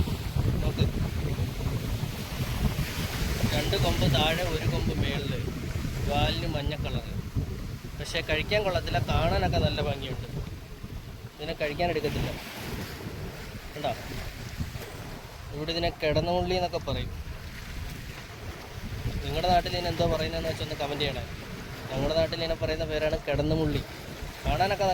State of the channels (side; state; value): both; identical; correlation 1.00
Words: നോക്ക്. 2 കൊമ്പ് താഴെ, 1 കൊമ്പ് മേളിൽ, വാലിന് മഞ്ഞ കളറ്. പക്ഷേ കഴിക്കാൻ കൊള്ളത്തില്ല, കാണാനൊക്കെ നല്ല ഭംഗിയുണ്ട്. ഇതിനെ കഴിക്കാൻ എടുക്കത്തില്ല. കണ്ടോ, ഇവിടെ ഇതിനെ കിടന്നുള്ളി എന്നൊക്കെ പറയും. നിങ്ങളുടെ നാട്ടിൽ ഇതിന് എന്തോ പറയുന്നതെന്ന് വെച്ചാൽ ഒന്ന് കമൻറ്റ് ചെയ്യണേ. ഞങ്ങളുടെ നാട്ടിൽ ഇതിനെ പറയുന്ന പേരാണ് കിടന്നുമുള്ളി. കാണാനൊക്കെ